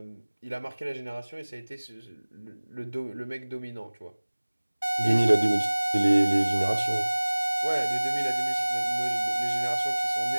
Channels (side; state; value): both; inverted; correlation -1.00